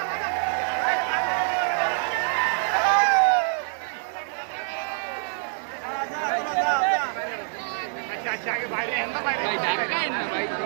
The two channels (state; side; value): silent; left; 61 dB below the other